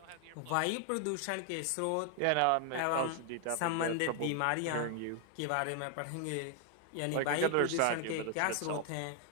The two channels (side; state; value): both; different; correlation 0.00